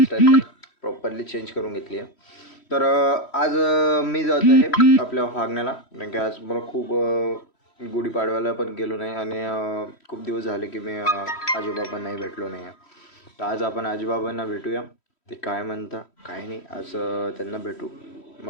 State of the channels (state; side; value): late; right; 3.1 ms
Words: प्रॉपरली चेंज करून घेतली आहे. तर आज मी जात आहे आपल्या वागण्याला कारण की आज मला खूप गुढीपाडव्याला पण गेलो नाही आणि खूप दिवस झाले की मी आजोबाबांनाही भेटलो नाही आहे. तर आज आपण आजोबाबांना भेटूया, ते काय म्हणता काय नाही, आज त्यांना भेटू.